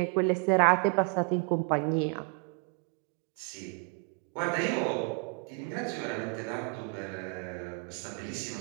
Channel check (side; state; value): left; quieter; 32.3 dB